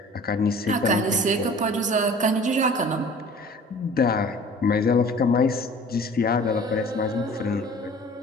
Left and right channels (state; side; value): normal; both; correlation 0.46